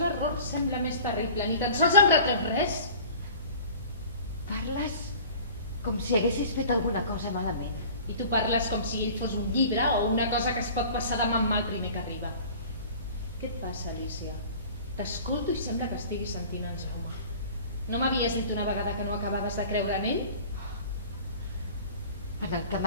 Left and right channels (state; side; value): inverted; both; correlation -0.43